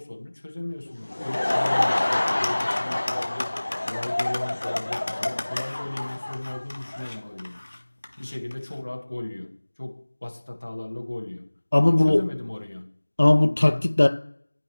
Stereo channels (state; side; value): inverted; both; correlation -1.00